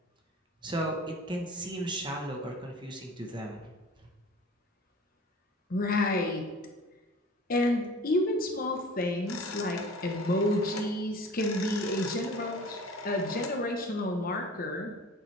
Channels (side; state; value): both; normal; correlation 0.43